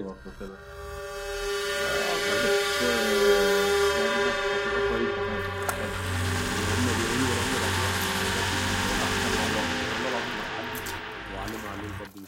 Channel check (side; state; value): both; identical; correlation 1.00